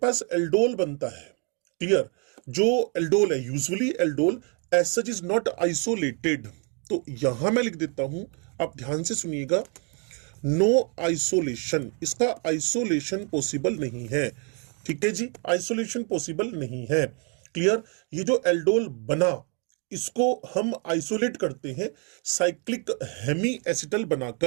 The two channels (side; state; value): left; quieter; 37.7 dB